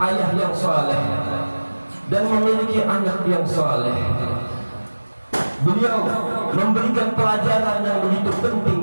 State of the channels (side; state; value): both; inverted; correlation -1.00